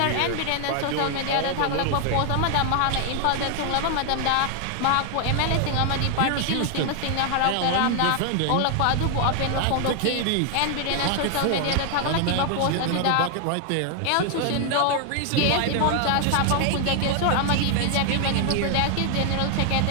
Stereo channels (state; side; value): different; both; correlation 0.00